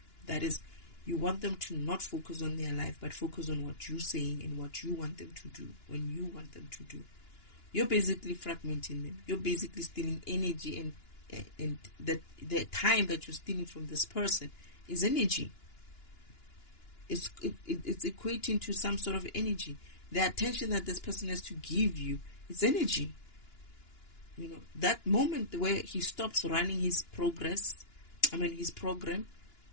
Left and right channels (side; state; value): right; late; 2.9 ms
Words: That is, you want them to not focus on their life, but focus on what you're saying and what you want them to do when you want them to do. You're basically fragmenting them. You're basically stealing energy, and the time that you're stealing from this person is energy. It's equating to some sort of energy. The attention that this person has to give you is energy. You know, that moment where he stops running his progress, his program,